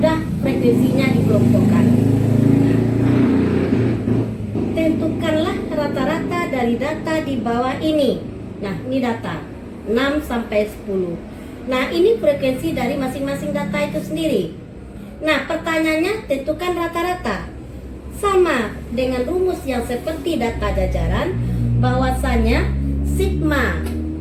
frekuensinya dikelompokkan. Tentukanlah rata-rata dari data di bawah ini. Nah, ini data 6 sampai 10. Nah, ini frekuensi dari masing-masing data itu sendiri. Nah, pertanyaannya tentukan rata-rata. Sama dengan rumus yang seperti data jajaran, bahwasanya sigma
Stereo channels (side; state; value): both; identical; correlation 1.00